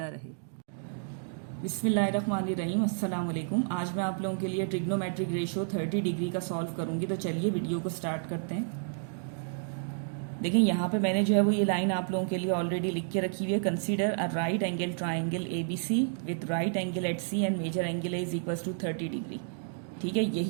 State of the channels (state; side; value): silent; left; digital silence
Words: रहे। बिस्मिल्लाहिर्रहमानिर्रहीम, अस्सलाम वालेकुम। आज मैं आप लोगों के लिए ट्रिग्नोमेट्रिक रेशियो 30 डिग्री का सॉल्व करूंगी। तो चलिए वीडियो को स्टार्ट करते हैं। देखिए यहाँ पे मैंने जो है वो ये लाइन आप लोगों के लिए ऑलरेडी लिख के रखी हुई है। Consider a right angle triangle ABC with right angle at C and major angle is equals to 30 degree. ठीक है,